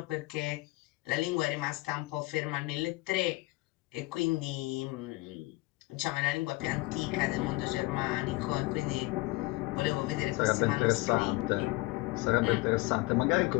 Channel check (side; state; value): right; quieter; 21.8 dB